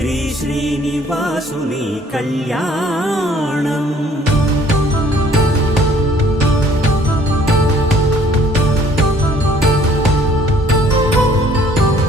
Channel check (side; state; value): both; normal; correlation 0.58